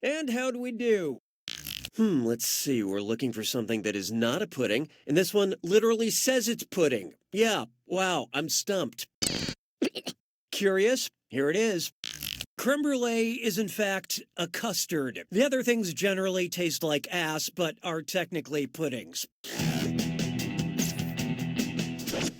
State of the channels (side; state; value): both; identical; correlation 1.00